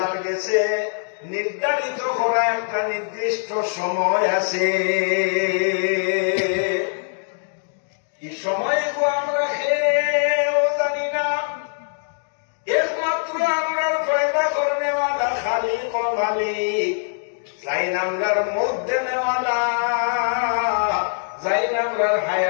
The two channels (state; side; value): silent; right; digital silence